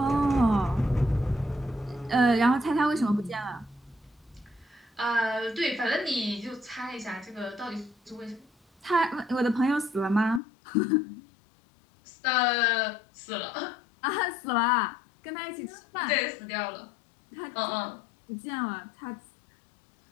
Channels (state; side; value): drops out; right; at 10.4 s